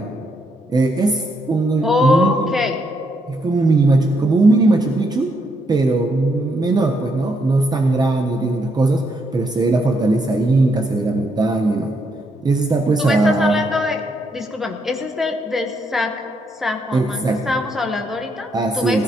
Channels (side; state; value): both; normal; correlation 0.76